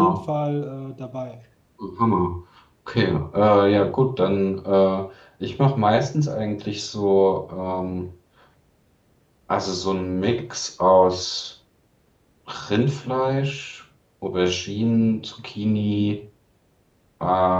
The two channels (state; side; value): identical; both; correlation 1.00